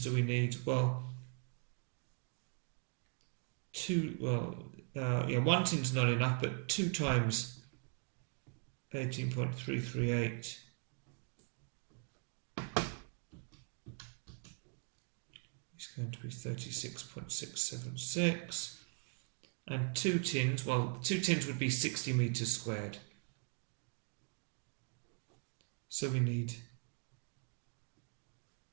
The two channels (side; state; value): left; quieter; 39.3 dB